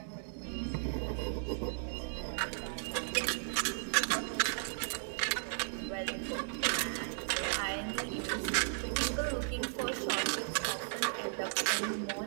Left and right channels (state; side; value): silent; left; 54 dB below the other